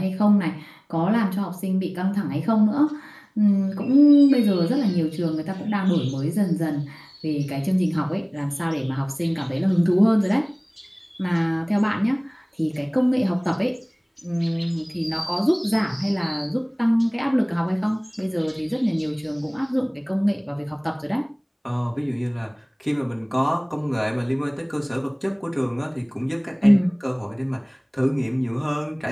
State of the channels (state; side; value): identical; both; correlation 1.00